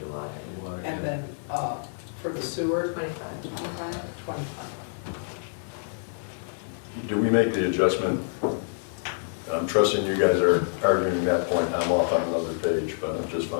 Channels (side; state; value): right; silent; digital silence